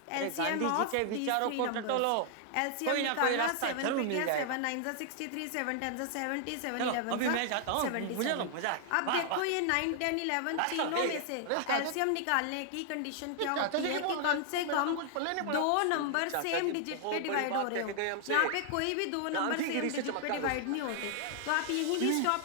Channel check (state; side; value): different; both; correlation 0.00